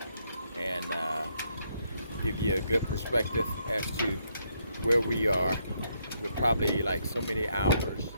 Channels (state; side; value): inverted; both; correlation -0.74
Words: and give you a good perspective as to where we are. We're probably like so many hours